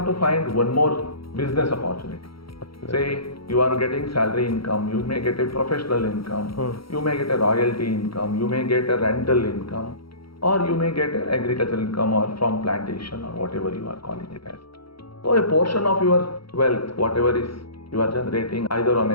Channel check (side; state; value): right; late; 0.75 ms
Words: to find one more business opportunity. Say you are getting salary income, you may get a professional income, you may get a royalty income, you may get a rental income, or you may get an agricultural income or from plantation or whatever you are calling it as. So a portion of your wealth, whatever is you are generating either on